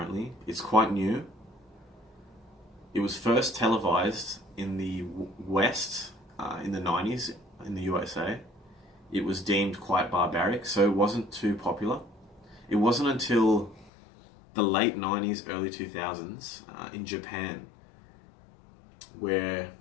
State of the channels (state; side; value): drops out; right; at 13.9 s